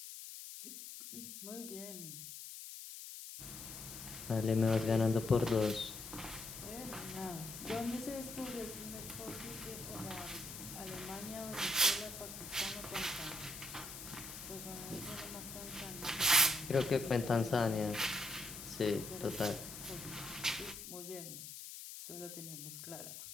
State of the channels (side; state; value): left; noise; hiss, 10 dB below the sound